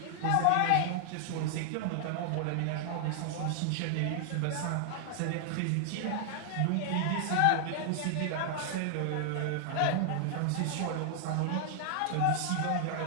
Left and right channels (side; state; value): both; different; correlation 0.00